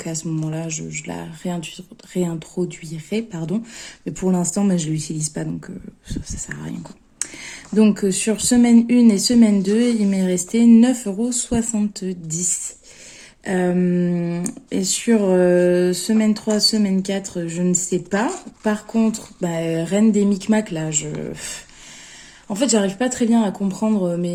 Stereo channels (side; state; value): both; identical; correlation 1.00